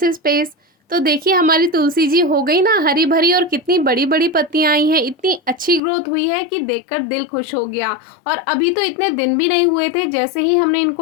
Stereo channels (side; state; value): right; drops out; at 5.8 s